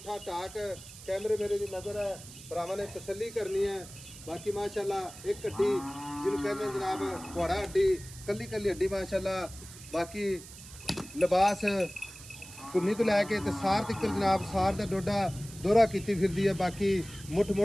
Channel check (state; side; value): noise; right; hiss, 16 dB below the sound